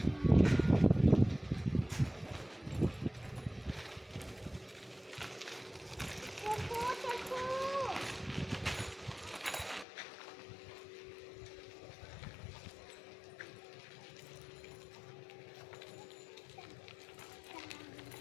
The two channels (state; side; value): drops out; right; at 9.9 s